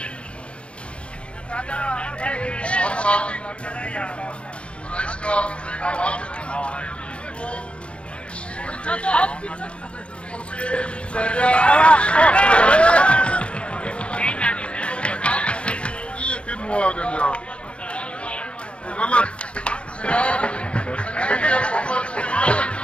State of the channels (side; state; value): right; late; 0.059 ms